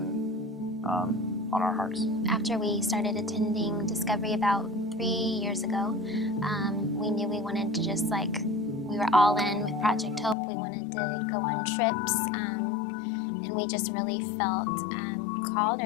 on our hearts. After we started attending Discovery about 3 years ago, we knew we wanted to just we were all in with Project Hope. We wanted to go on trips, and we just really felt called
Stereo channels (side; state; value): right; drops out; at 10.4 s